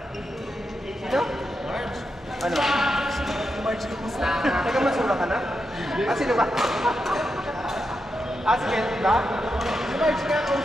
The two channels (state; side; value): normal; both; correlation 0.86